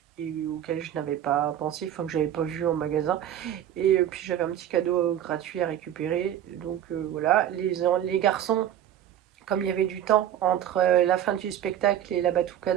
et auquel je n'avais pas pensé, enfin que j'avais pas vu en magasin. Et puis j'avais un petit cadeau gratuit à récupérer. Donc voilà, les garçons, comme il y avait du temps entre la fin du spectacle et la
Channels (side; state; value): left; quieter; 10.9 dB